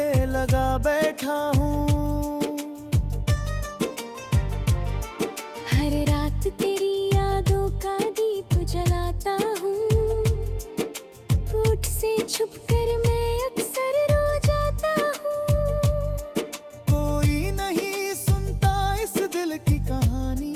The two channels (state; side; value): identical; both; correlation 1.00